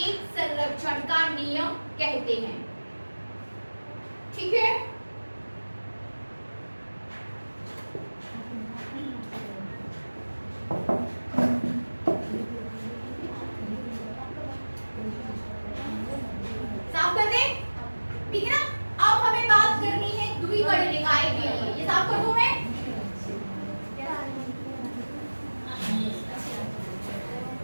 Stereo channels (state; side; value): inverted; both; correlation -1.00